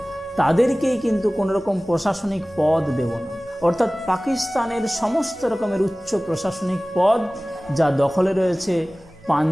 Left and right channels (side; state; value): both; normal; correlation 0.98